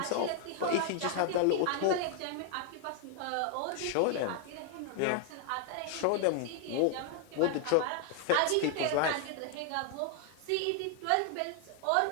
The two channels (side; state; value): both; different; correlation 0.00